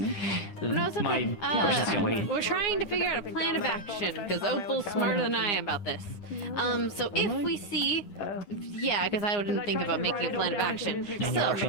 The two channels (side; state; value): right; late; 9.8 ms